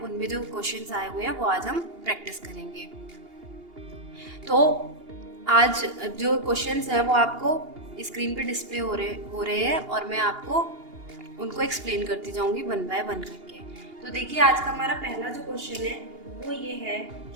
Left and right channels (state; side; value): late; left; 2.8 ms